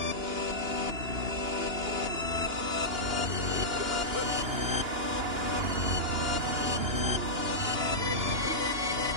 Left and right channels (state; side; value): late; left; 2.9 ms